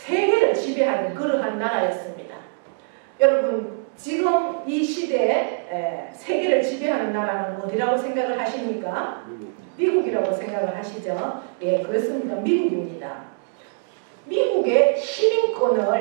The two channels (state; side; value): silent; left; digital silence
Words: 지배하는 그러한 나라였습니다. 여러분 지금 이 시대에 세계를 지배하는 나라는 어디라고 생각을 하십니까? 미국이라고 생각을 하시죠? 예, 그렇습니다. 미국입니다. 미국의